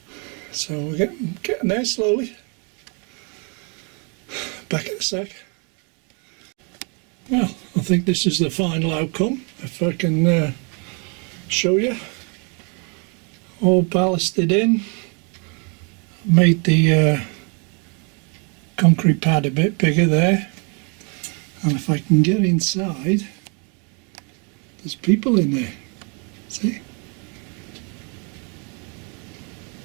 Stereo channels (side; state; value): left; quieter; 35.3 dB